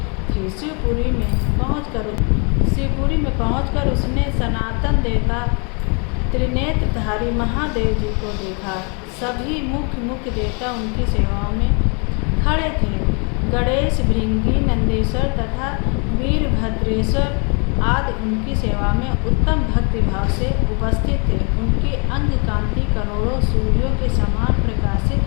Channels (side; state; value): right; quieter; 35.2 dB